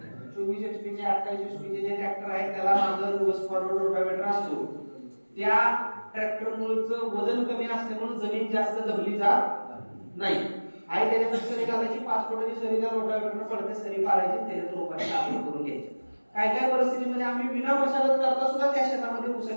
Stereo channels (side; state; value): both; inverted; correlation -1.00